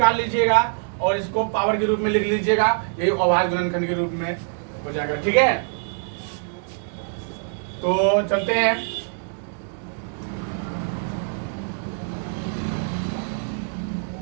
लीजिएगा और इसको पावर के रूप में लिख लीजिएगा, यही अभाज्य गुणनखंड के रूप में हो जाएगा। ठीक है, तो चलते हैं।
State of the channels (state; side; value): silent; left; 59 dB below the other